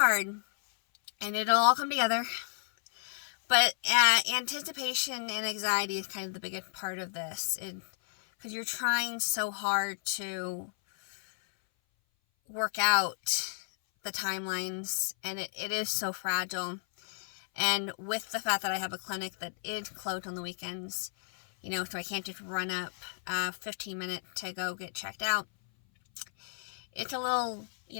and it'll all come together. But anticipation and anxiety is kind of the biggest part of this, because you're trying so hard to work out the timelines, and it is so fragile. And with the fact that I have a clinic that is closed on the weekends, so I can't just run up 15 minutes to go get checked out, it's a little,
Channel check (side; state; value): right; silent; 56 dB below the other